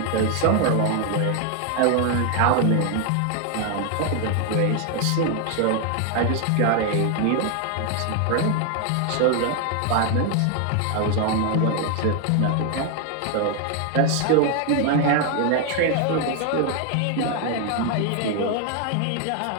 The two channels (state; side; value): different; both; correlation 0.01